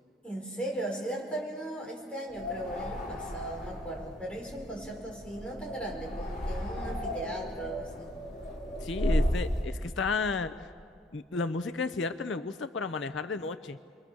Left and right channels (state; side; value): normal; both; correlation 0.61